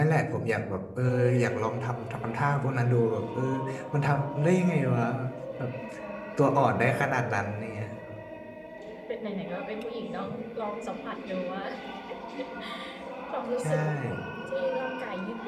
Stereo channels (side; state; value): both; identical; correlation 1.00